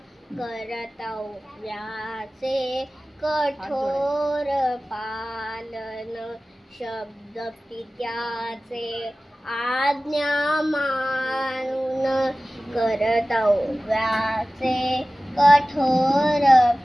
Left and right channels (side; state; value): both; normal; correlation 0.97